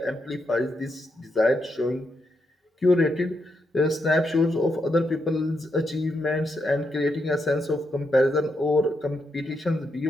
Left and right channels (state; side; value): normal; both; correlation 0.81